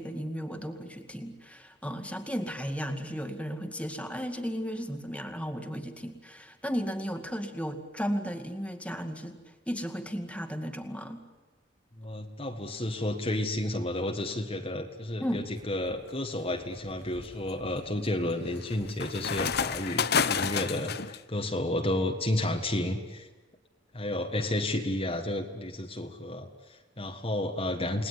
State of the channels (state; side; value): normal; both; correlation 0.54